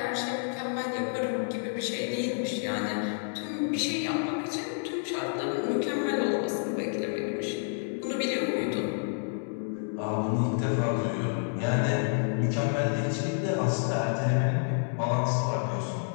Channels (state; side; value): silent; right; digital silence